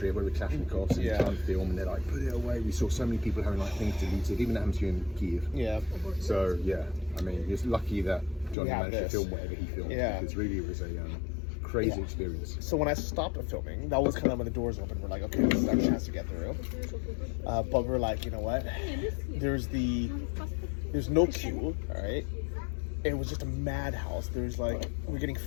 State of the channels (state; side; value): drops out; right; at 8.6 s